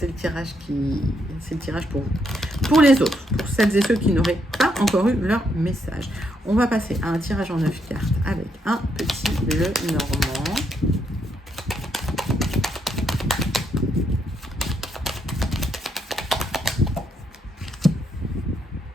le tirage pour vous. Pour les autres, pour celles et ceux qui n'auraient pas encore eu leur message, on va passer à un tirage en 9 cartes avec un petit Lenormand.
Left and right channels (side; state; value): both; normal; correlation 0.77